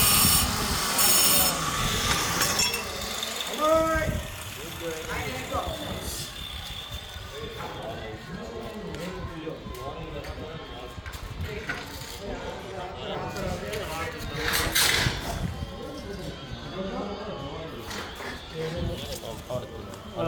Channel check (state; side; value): identical; both; correlation 1.00